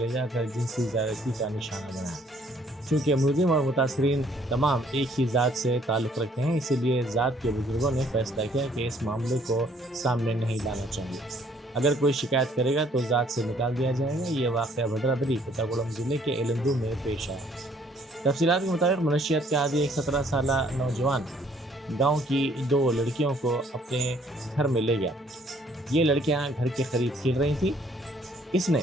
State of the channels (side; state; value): both; normal; correlation 0.63